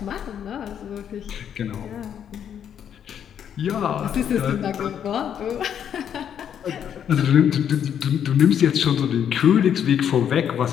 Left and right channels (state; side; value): quieter; right; 8.9 dB